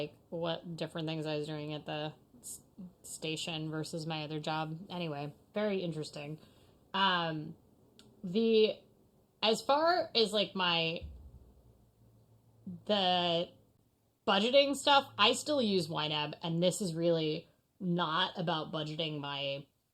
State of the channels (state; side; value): identical; both; correlation 1.00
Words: what different things I was doing at the station versus my other job. Anyway, very interesting. The as far as like the budgeting stuff, I still use YNAB, and this is really not about budgeting my